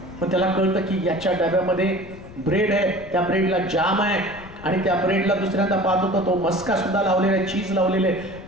पण त्याला कळतं की याच्या डब्यामध्ये ब्रेड आहे, त्या ब्रेडला जाम आहे, आणि त्या ब्रेडला दुसऱ्यांदा पाहत होता तो मस्का सुद्धा लावलेला आहे, चीज लावलेले आहे.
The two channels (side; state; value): left; noise; rumble, 18 dB below the sound